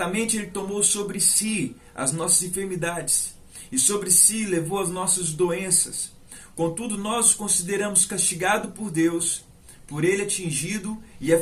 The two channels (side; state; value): both; identical; correlation 1.00